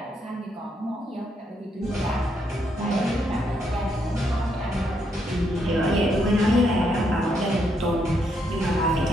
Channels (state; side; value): normal; both; correlation 0.76